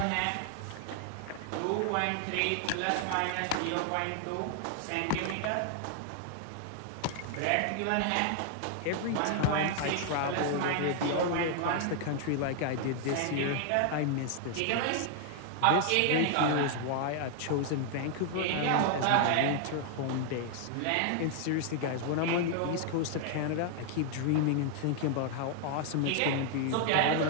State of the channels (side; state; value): both; different; correlation 0.00